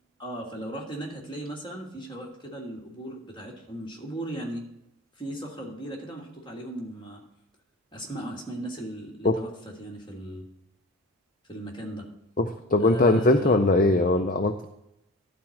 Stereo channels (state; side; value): normal; both; correlation 0.37